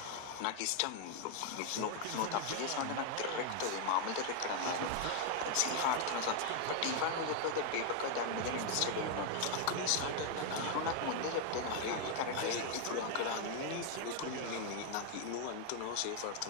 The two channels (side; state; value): both; different; correlation 0.00